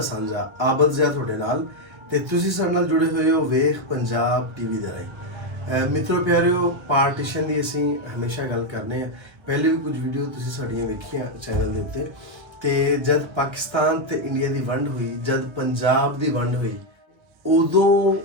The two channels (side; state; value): left; late; 1.1 ms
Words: ਸਾਂਝਾ ਆਬਦ ਜ਼ਿਆ ਤੁਹਾਡੇ ਨਾਲ ਤੇ ਤੁਸੀਂ ਸਾਡੇ ਨਾਲ ਜੁੜੇ ਹੋਏ ਹੋ ਵੇਖ ਪੰਜਾਬ ਟੀਵੀ ਦੇ ਰਾਹੀਂ ਮਿੱਤਰੋ ਪਿਆਰਿਓ ਪਾਰਟੀਸ਼ਨ ਦੀ ਅਸੀਂ ਹਮੇਸ਼ਾ ਗੱਲ ਕਰਨੇ ਆ ਪਹਿਲੇ ਵੀ ਕੁਝ ਵੀਡੀਓ ਤੁਸੀਂ ਸਾਡੀਆਂ ਵੇਖੀਆਂ ਚੈਨਲ ਦੇ ਉੱਤੇ ਤੇ ਜਦ ਪਾਕਿਸਤਾਨ ਤੇ ਇੰਡੀਆ ਦੀ ਵੰਡ ਹੋਈ ਜਦ ਪੰਜਾਬ ਦੀ ਵੰਡ ਹੋਈ ਉਦੋਂ